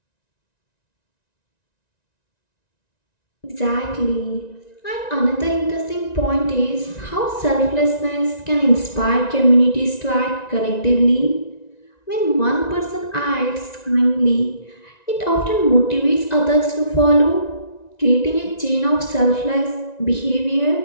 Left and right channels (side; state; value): right; late; 1.9 ms